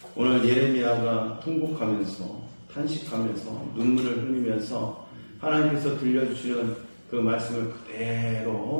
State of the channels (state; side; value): inverted; both; correlation -1.00